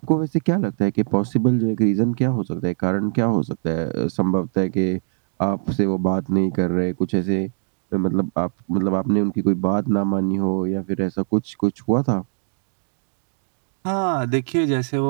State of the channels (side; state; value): left; silent; digital silence